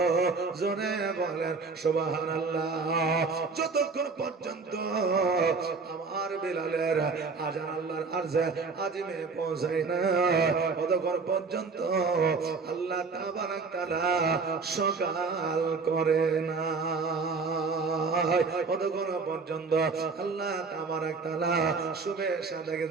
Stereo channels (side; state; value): left; quieter; 4.5 dB